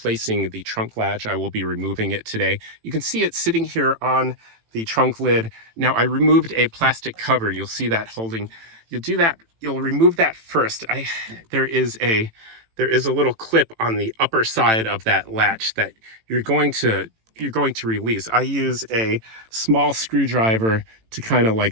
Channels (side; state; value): left; late; 18 ms